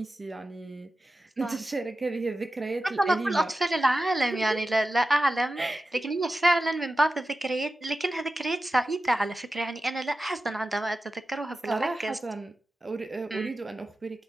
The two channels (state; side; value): normal; both; correlation 0.93